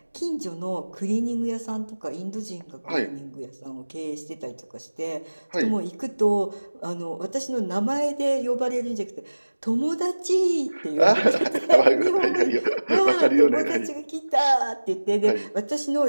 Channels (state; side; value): inverted; both; correlation -1.00